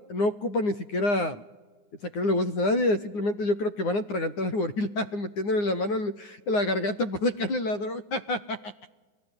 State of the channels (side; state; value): right; late; 9.7 ms